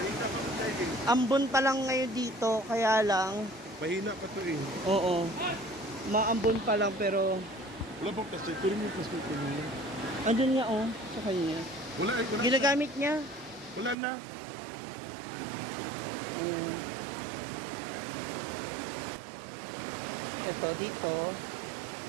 Ambon pa lang ngayon dito, kaya lang. Mahina pa to eh. Oo. Maambon pa lang pero Wala bang plastic? Tuloy yung plastic ko niya. andun nga oh, sa kanya. Wala eh. Wala, Ginagamit niya. wala na. Ayan. Ito dito,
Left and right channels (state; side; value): drops out; left; at 14.0 s